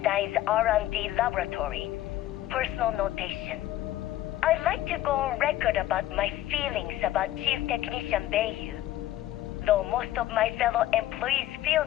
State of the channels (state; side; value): quieter; right; 14.2 dB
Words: R&D laboratory. Personal notation. I'd like to go on record about my feelings about Chief Technician Bayu. Though most of my fellow employees feel